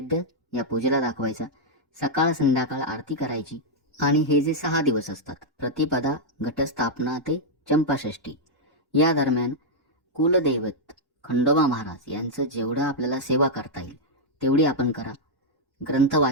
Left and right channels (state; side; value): normal; both; correlation -0.04